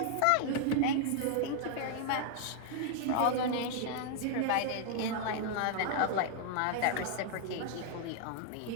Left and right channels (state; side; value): different; both; correlation 0.00